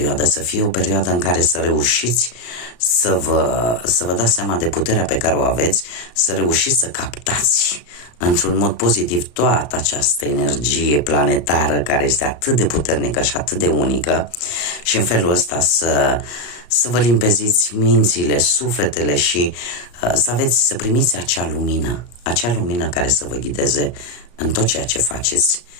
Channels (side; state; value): right; late; 34 ms